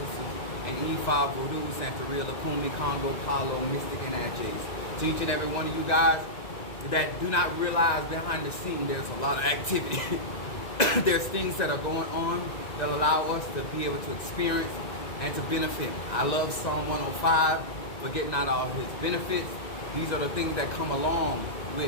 in E5, Voodoo, Santeria, Lukumi, Congo, Palo, Mystic, and Adjays. To each and every one of you guys that do not realize behind the scene there's a lot of activity. There's things that are going on that allow us to be able to experience and to benefit. I love Psalm 105, forgetting not all his benefits. These are the things that come along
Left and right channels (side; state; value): right; late; 2.0 ms